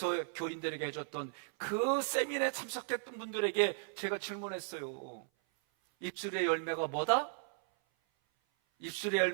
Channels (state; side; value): silent; left; 54 dB below the other